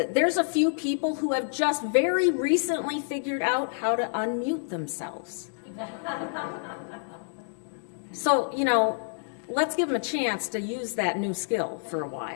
there's a few people who have just very recently figured out how to unmute themselves. So, let's give them a chance to use that new skill for a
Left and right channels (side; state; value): right; silent; digital silence